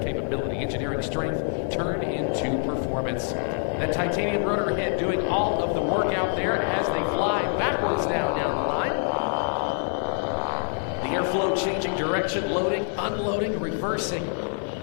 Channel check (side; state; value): right; silent; digital silence